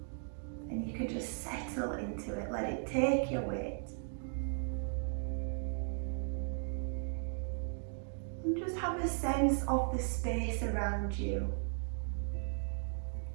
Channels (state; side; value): silent; left; 53 dB below the other